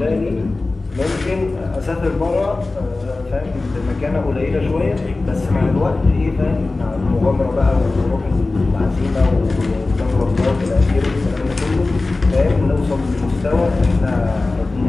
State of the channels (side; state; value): right; quieter; 3.3 dB